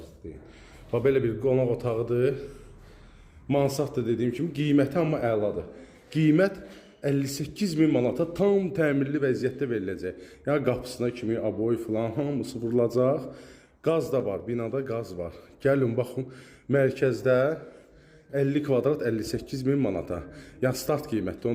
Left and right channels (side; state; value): both; identical; correlation 1.00